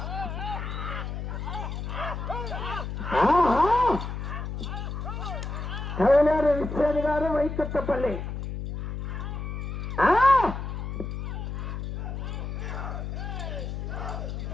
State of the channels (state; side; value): noise; left; hum, 5 dB below the sound